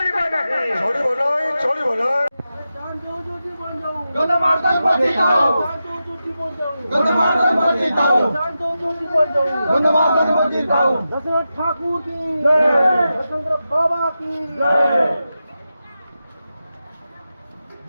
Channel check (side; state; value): both; inverted; correlation -0.91